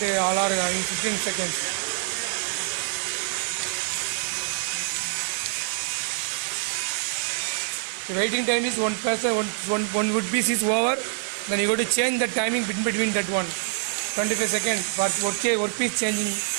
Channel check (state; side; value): silent; left; 61 dB below the other